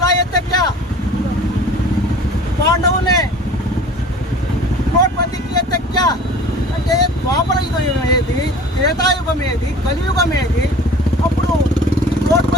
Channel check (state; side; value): normal; both; correlation 0.44